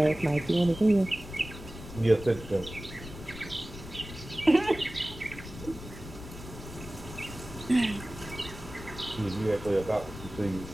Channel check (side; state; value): left; noise; rumble, 13 dB below the sound